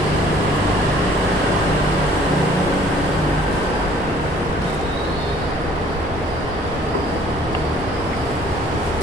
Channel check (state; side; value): normal; both; correlation 0.56